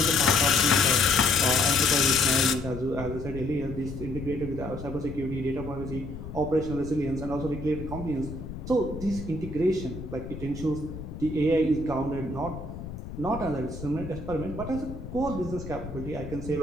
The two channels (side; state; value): left; noise; rumble, 10 dB below the sound